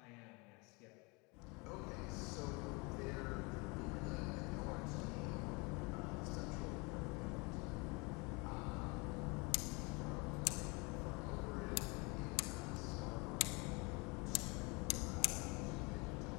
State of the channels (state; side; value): quieter; right; 28.9 dB